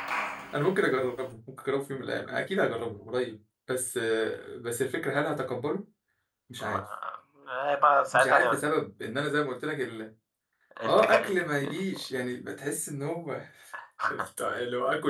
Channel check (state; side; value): identical; both; correlation 1.00